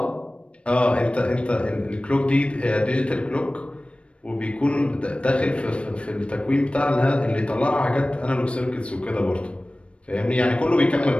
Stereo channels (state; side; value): late; right; 0.060 ms